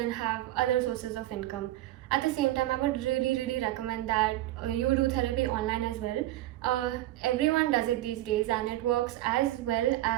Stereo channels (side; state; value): left; quieter; 15.5 dB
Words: have other sources of income. At the same time, I would really recommend that you do therapy online as well. Everyone does it these days and it works as well